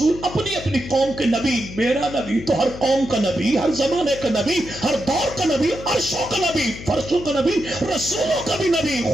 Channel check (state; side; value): noise; left; hum, 13 dB below the sound